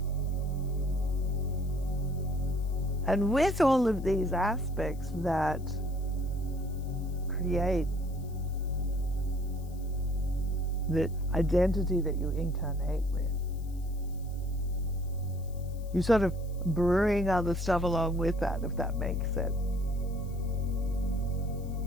And with all of these aspects that create the identity that you incarnate with, you sort of bring other stuff along with that, if that makes sense.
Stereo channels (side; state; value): left; noise; hiss, 25 dB below the sound